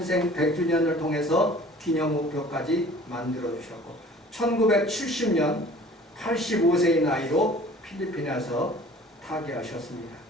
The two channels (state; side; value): normal; both; correlation 0.48